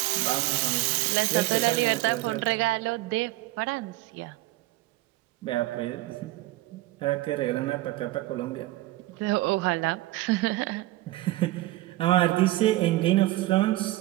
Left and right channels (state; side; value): quieter; left; 17.8 dB